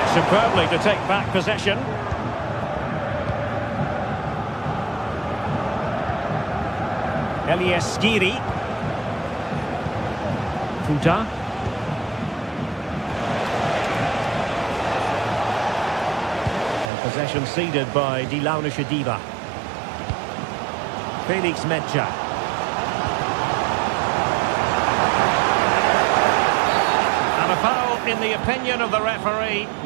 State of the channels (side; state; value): left; drops out; at 16.9 s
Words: Superbly to take back possession. Elias Skiri. Futa. Possession ceded by Die Launische Diva. Felix Metscher. And a foul in the opinion of the referee.